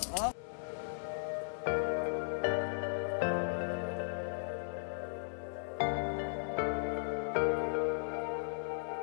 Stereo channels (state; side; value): silent; right; 53 dB below the other